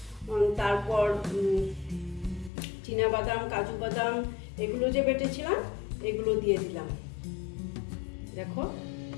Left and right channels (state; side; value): drops out; right; at 2.5 s